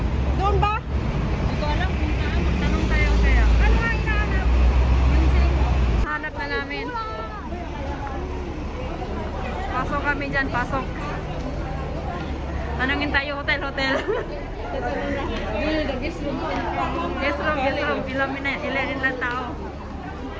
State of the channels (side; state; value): both; identical; correlation 1.00